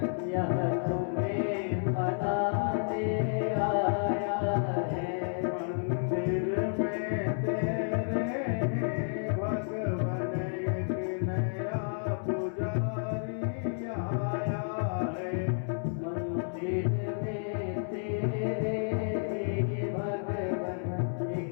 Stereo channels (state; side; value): silent; right; 57 dB below the other